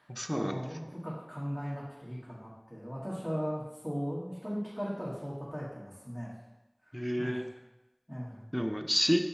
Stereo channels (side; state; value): both; identical; correlation 1.00